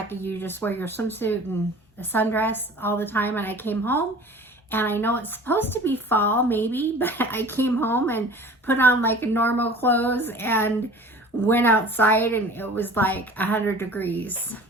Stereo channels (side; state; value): both; normal; correlation 0.43